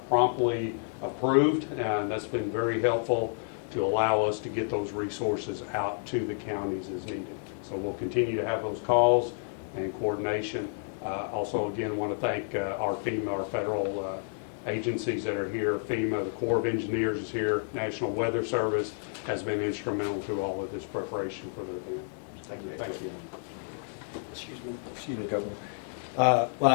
promptly approved, and that's been very helpful to allow us to get those resources out to the counties as needed. So we'll continue to have those calls and coordination. Also, again, want to thank our FEMA, our federal agencies that are here. FEMA, the Corps of Engineers is here. National Weather Service has been instrumental through all of this preparation for the event. Thank you. Excuse me, Governor. Well,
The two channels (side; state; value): right; silent; digital silence